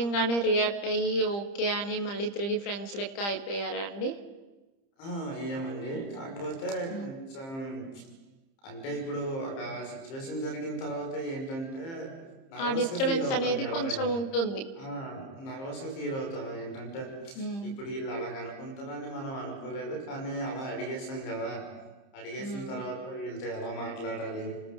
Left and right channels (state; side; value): late; right; 30 ms